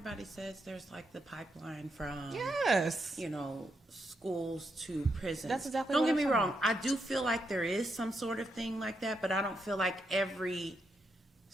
says there's like the pipeline from Yes. you know, schools to prisons. That's exactly Don't what get I'm me talking wrong. about. I do feel like there is some sort of thing like that, but I don't feel like every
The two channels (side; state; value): both; normal; correlation 0.81